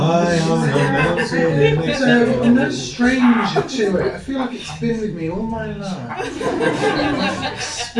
So I'm no stranger to it. I feel like it's been with me all my life.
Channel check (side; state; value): both; identical; correlation 1.00